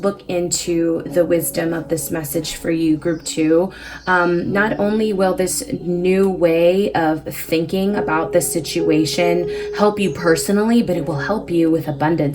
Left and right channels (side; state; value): both; identical; correlation 1.00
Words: into the wisdom of this message for you, group 2, not only will this new way of thinking about the situation help you personally, but it will help you with